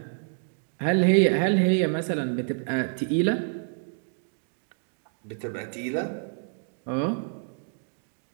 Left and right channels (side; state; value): left; silent; digital silence